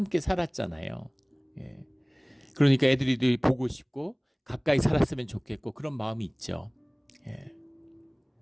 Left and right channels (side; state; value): both; identical; correlation 1.00